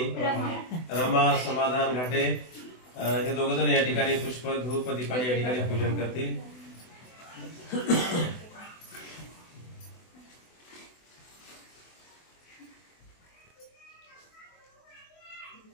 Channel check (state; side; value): late; right; 24 ms